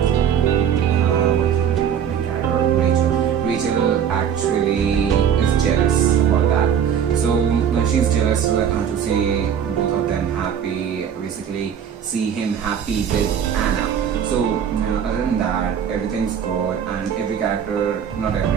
what's the name of the character? Rachel actually is jealous about that. So she's jealous to see both of them happy, basically see him happy with Anna. So other than that, everything's good, and every character, not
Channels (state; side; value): quieter; left; 8.4 dB